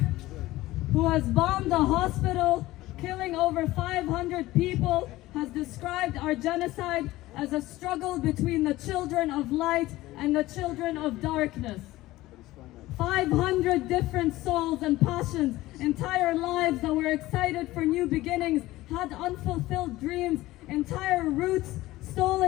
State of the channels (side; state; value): right; quieter; 17.4 dB